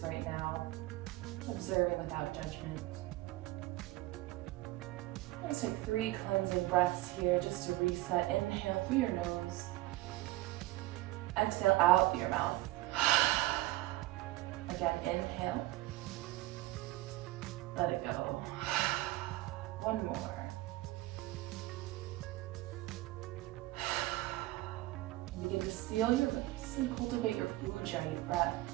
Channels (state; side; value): quieter; left; 18.3 dB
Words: right now, observing without judgment. Let's take 3 cleansing breaths here just to reset. Inhale through your nose. Exhale out through your mouth. Again, inhale. Let it go. One more. Begin to seal your lips and cultivate your Ujjayi breath.